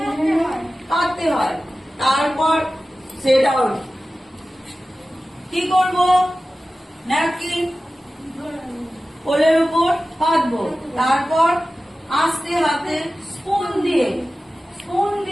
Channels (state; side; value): normal; both; correlation 0.95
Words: পাততে হয়। তারপর সেট আউট কি করব? ন্যাপকিন কোলের উপর পাতবো। তারপর আস্তে হাতে স্পুন